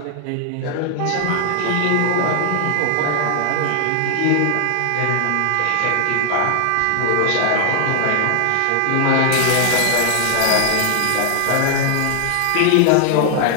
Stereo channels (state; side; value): different; both; correlation 0.00